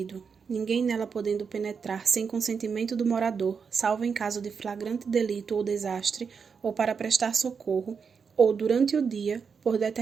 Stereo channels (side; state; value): left; quieter; 6.0 dB